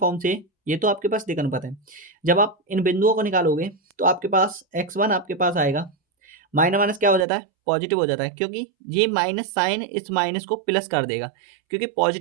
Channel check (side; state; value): left; drops out; at 7.2 s